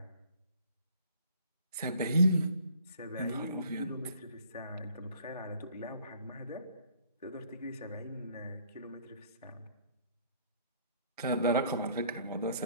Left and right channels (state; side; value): inverted; both; correlation -0.58